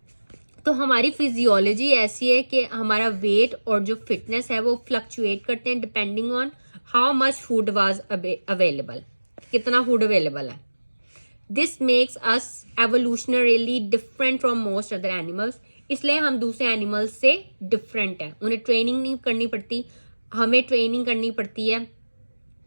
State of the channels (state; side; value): inverted; both; correlation -1.00